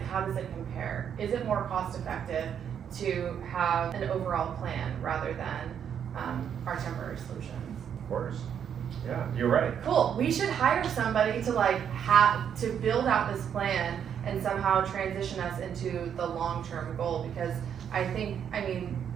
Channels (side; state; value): left; quieter; 8.4 dB